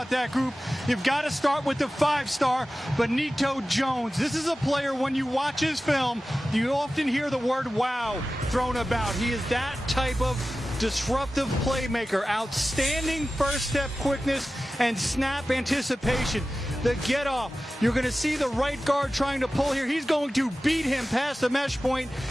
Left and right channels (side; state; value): both; normal; correlation 0.95